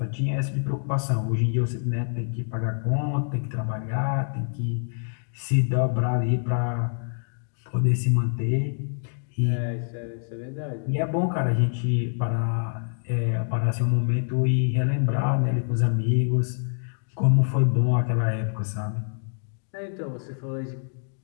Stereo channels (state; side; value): silent; right; digital silence